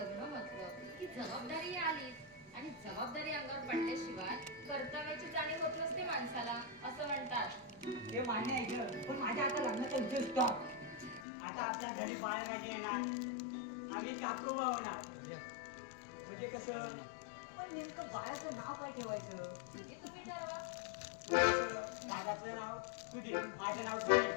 म्हटलं की जबाबदारी आलीच आणि जबाबदारी अंगावर पडल्याशिवाय कर्तव्याची जाणीव होत नसते माणसाला असं म्हणतात हे मान्य आहे ग पण माझ्या आता लग्नाचा उद्देश स्टॉप आता आपल्या घरी बाळराजे येणार आम्ही काकोबा होणार म्हणजे कसं पण नेमकं बाळाचं नाव काय ठेवायचं हे तुम्ही ठरवा दादाचं नाव सुधीर माझं नाव सुधीर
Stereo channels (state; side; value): drops out; right; at 11.2 s